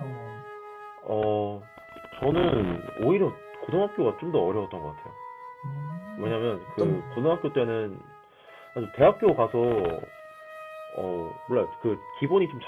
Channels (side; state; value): both; identical; correlation 1.00